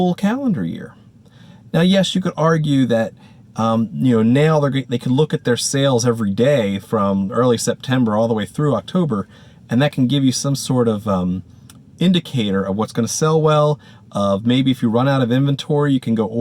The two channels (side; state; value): both; identical; correlation 1.00